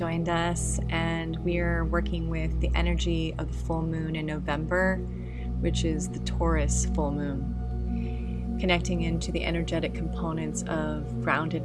us, and we are working with the energy of the full moon in November, which is the Taurus full moon, connecting into the energetic components of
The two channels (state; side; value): identical; both; correlation 1.00